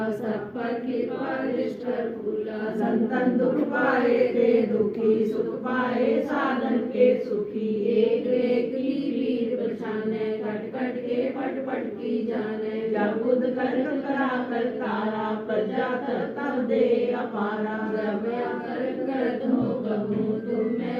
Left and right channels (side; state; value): both; identical; correlation 1.00